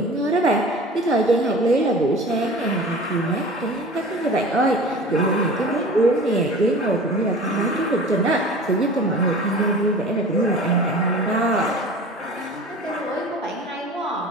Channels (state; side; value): normal; both; correlation 0.40